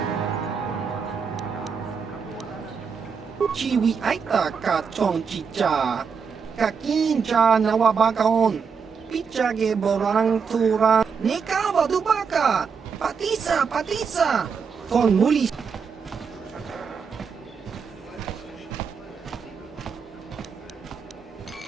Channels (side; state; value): left; quieter; 6.0 dB